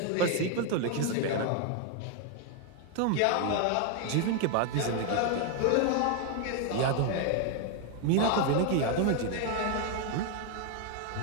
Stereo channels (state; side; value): different; both; correlation 0.01